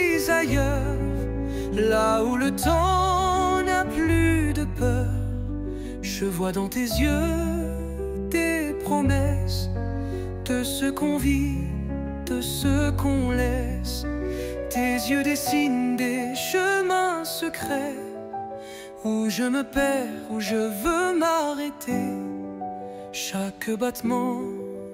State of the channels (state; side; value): identical; both; correlation 1.00